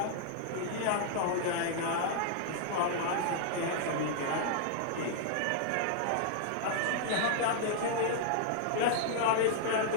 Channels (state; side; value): different; both; correlation -0.01